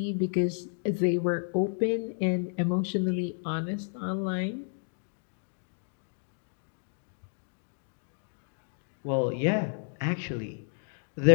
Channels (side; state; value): right; silent; digital silence